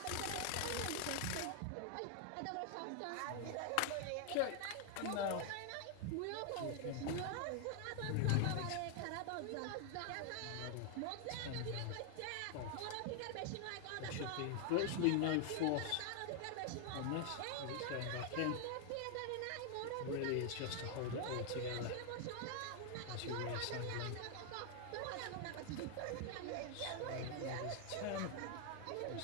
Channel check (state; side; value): different; both; correlation 0.00